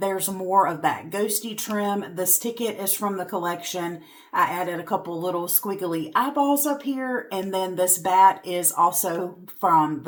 more of that ghosty trim. This ticket is from the collection. I added a couple little squiggly eyeballs up here, and then this bat is also from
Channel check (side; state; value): both; identical; correlation 1.00